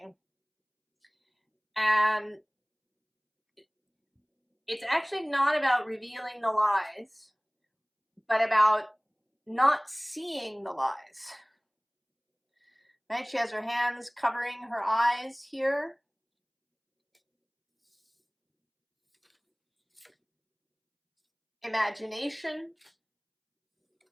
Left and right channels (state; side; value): identical; both; correlation 1.00